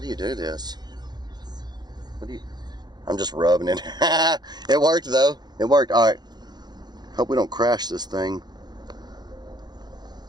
you do this? What do you... I'm just rubbing it. It worked though. It worked. All right. Hope we don't crash this thing.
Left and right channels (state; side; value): late; left; 0.20 ms